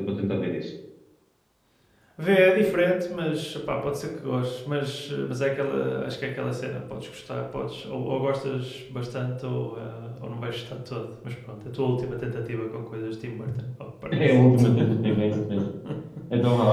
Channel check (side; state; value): both; identical; correlation 1.00